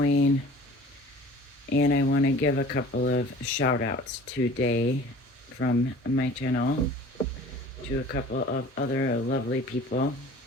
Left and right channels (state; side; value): normal; both; correlation 0.45